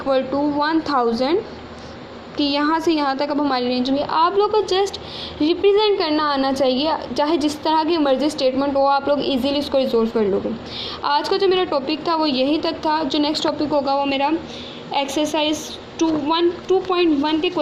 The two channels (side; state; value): both; identical; correlation 1.00